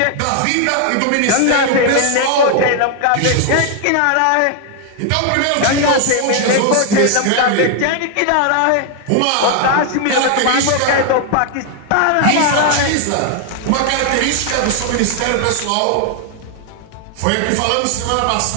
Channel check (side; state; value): both; different; correlation 0.00